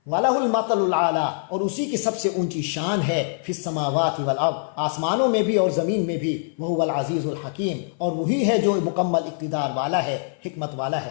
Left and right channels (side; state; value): right; silent; 56 dB below the other